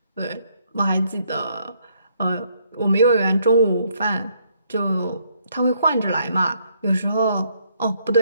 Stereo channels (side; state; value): both; inverted; correlation -0.69